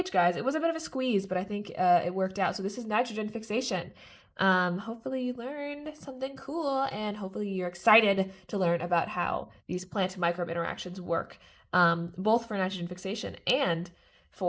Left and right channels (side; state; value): both; identical; correlation 1.00